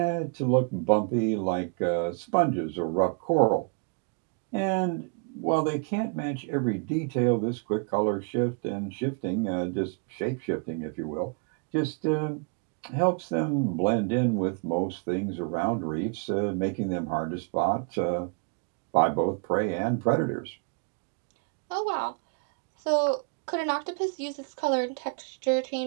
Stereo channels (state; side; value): quieter; left; 35.4 dB